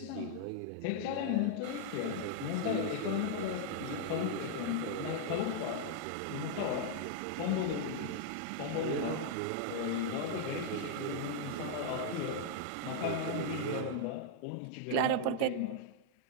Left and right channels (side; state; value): both; different; correlation -0.01